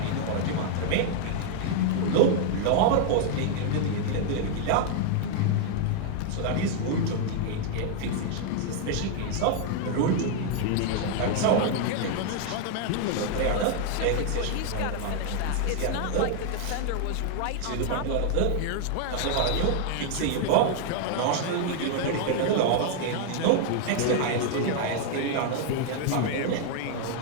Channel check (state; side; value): different; both; correlation 0.00